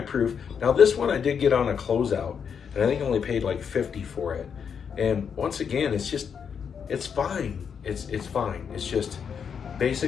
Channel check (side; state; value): right; quieter; 7.0 dB